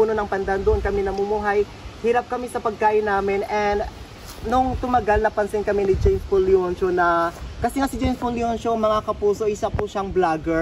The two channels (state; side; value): identical; both; correlation 1.00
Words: ng pandan, doon kami namumuhay. Hirap kami sa pagkain namin, and nung tumagal, napansin kami ni James Paul Leoncio na, kasi nga si James Paul Leoncio, mga kapuso, isa po siyang